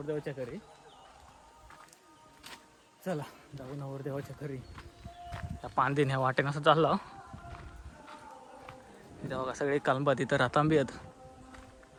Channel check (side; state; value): both; identical; correlation 1.00